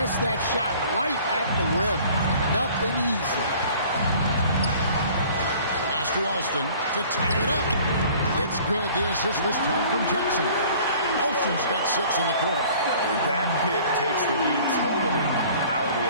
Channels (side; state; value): both; inverted; correlation -0.50